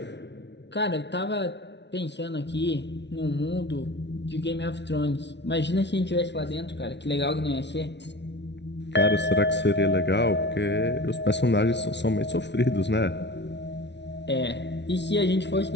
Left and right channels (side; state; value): right; late; 0.50 ms